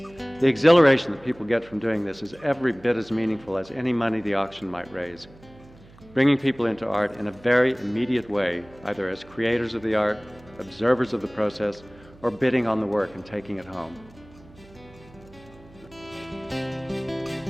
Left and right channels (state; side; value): noise; right; hum, 24 dB below the sound